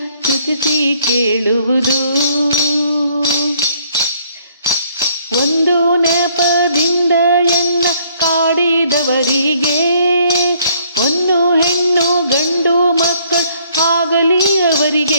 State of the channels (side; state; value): both; inverted; correlation -0.63